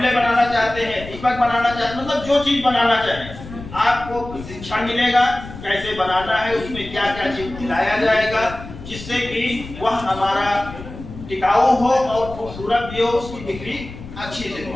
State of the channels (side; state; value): left; noise; rumble, 13 dB below the sound